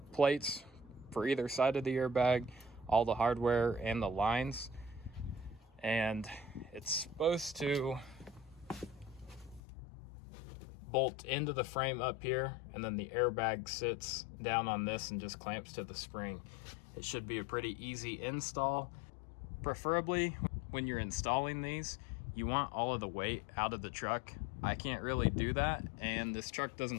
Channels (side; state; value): right; drops out; at 9.6 s